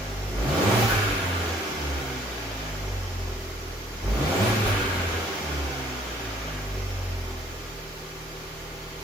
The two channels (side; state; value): both; normal; correlation 0.61